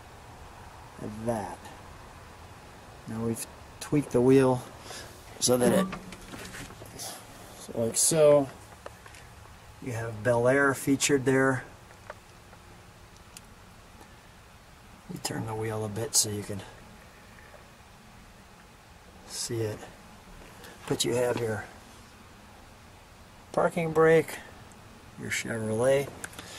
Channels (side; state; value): both; identical; correlation 1.00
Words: at that. Now we've tweaked the wheel so that it, so like so. You have Bel Air featured there. You turn the wheel a bit so you can see it. But you have your parking brake, your Chevrolet.